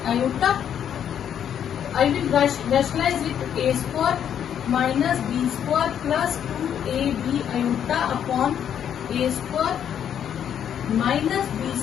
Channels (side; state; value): right; quieter; 9.1 dB